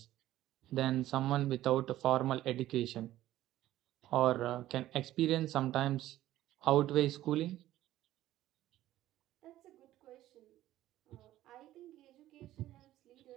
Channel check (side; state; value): left; quieter; 14.3 dB